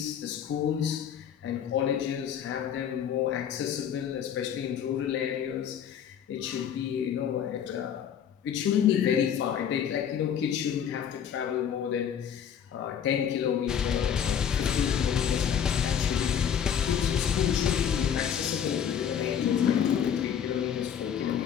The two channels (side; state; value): right; quieter; 8.6 dB